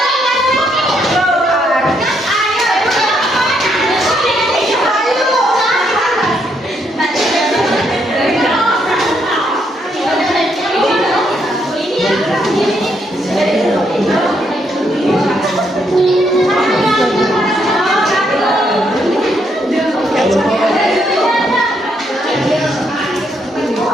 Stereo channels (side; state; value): both; normal; correlation 0.75